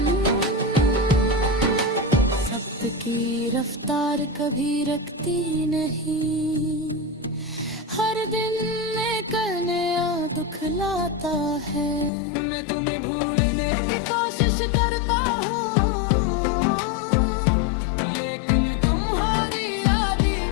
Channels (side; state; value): right; drops out; at 12.1 s